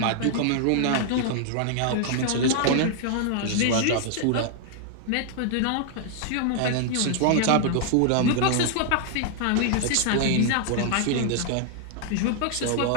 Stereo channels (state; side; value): different; both; correlation 0.00